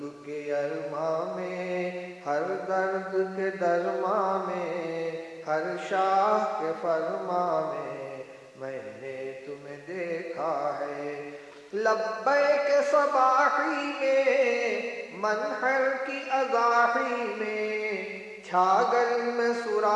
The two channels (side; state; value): both; identical; correlation 1.00